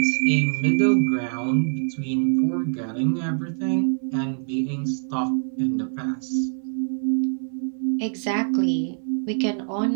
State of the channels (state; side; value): silent; left; digital silence